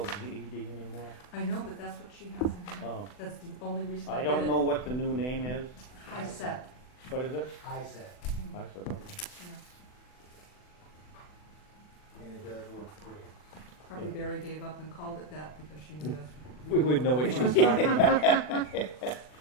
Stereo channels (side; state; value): right; late; 40 ms